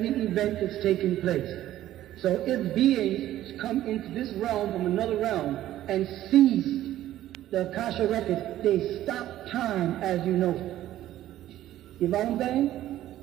event that's taking place. So if beings come into this realm from another realm and seize the Akasha records, they stop time as you know. You follow what I'm saying?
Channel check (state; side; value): quieter; left; 13.4 dB